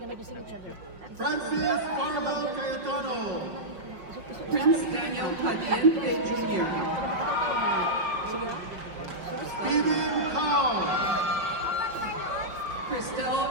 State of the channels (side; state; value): left; late; 5.5 ms